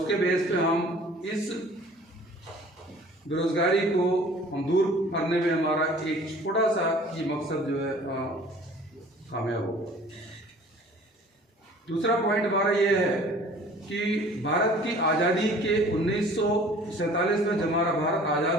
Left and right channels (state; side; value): normal; both; correlation 0.49